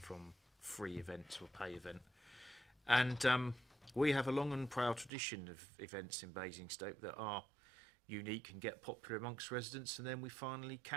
from free event to a pay event, and we have a long and proud tradition of events in Basingstoke that are unique and get popular amongst residents, and then we finally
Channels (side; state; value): left; drops out; at 5.1 s